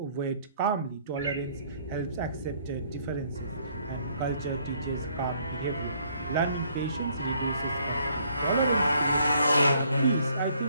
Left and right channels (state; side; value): inverted; both; correlation -0.65